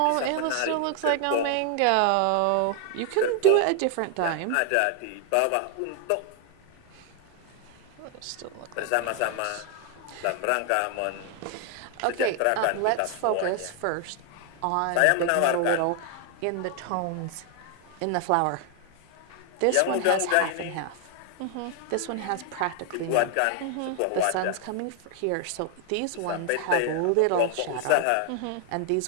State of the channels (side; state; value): both; different; correlation 0.00